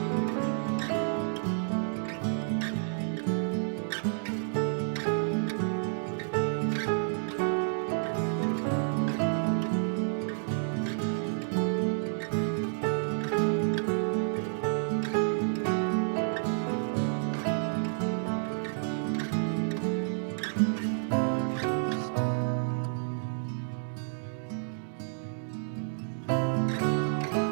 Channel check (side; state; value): left; silent; digital silence